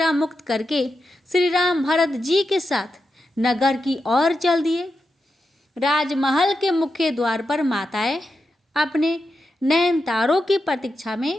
मुक्त करके श्री राम भरत जी के साथ नगर की ओर चल दिए। राजमहल के मुख्य द्वार पर माताएं अपने नयन तारों की प्रतीक्षा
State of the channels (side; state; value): both; normal; correlation 0.88